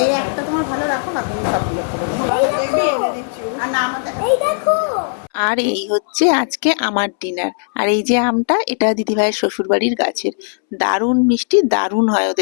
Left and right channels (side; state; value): right; silent; 66 dB below the other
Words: এই একটা তোমার ভালো রাখো না, তুমি সবগুলো খাবো। বেবি এনে দিচ্ছি। আর না আমাদের এই দেখো আর এই হচ্ছে আজকে আমার ডিনার। আর এই যে আমটা, এটা দিদিভাইয়ের শ্বশুরবাড়ির গাছের, দারুণ মিষ্টি, দারুণ হয়